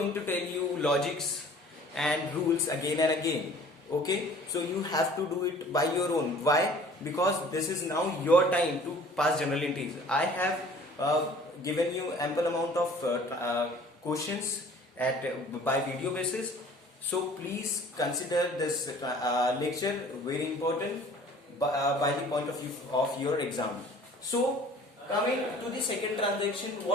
to tell you logics and rules again and again. Okay, so you have to do it by your own. Why? Because this is now your time to pass journal entries. I have given you ample amount of questions by video basis. So please consider this lecture very important by the point of view of your exam. So coming to the second transaction,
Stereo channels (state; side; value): normal; both; correlation 0.50